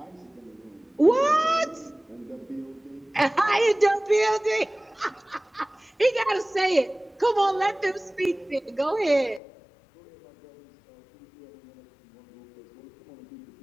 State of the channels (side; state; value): right; drops out; at 9.4 s